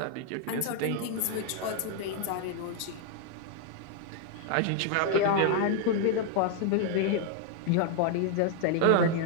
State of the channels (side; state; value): both; different; correlation 0.00